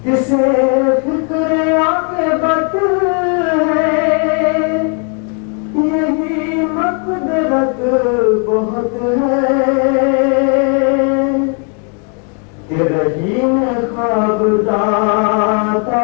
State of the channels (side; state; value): right; quieter; 39.6 dB